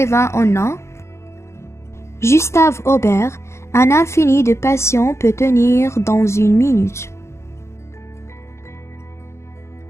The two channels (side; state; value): right; late; 0.13 ms